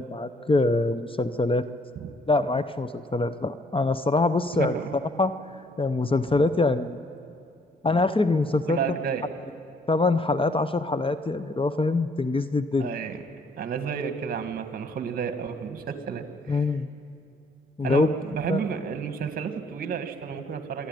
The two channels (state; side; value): normal; both; correlation 0.64